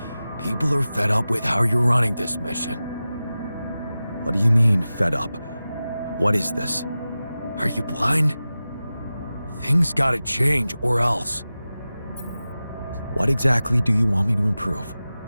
People are fed up with how you're running this mission. What do you mean, fed up? What is this? Are you blind? Things gotta change, or else. What exactly do you want me to improve?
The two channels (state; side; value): inverted; both; correlation -0.95